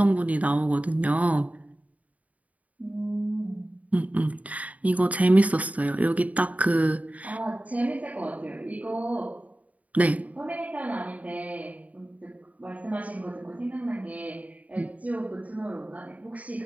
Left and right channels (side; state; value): left; late; 0.071 ms